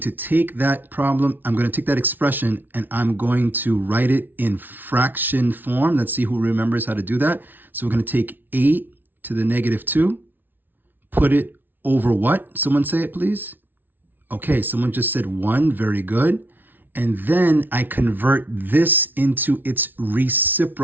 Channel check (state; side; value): late; left; 0.090 ms